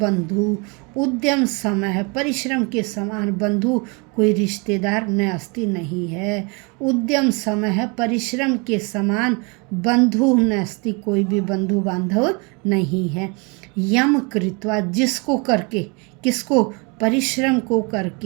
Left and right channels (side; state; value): left; quieter; 31.0 dB